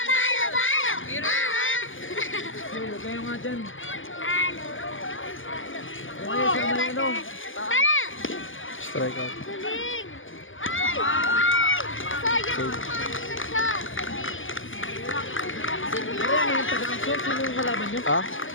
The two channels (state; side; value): late; right; 0.58 ms